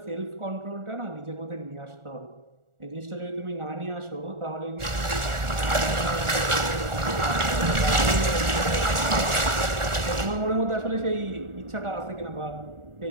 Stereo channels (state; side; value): late; left; 1.4 ms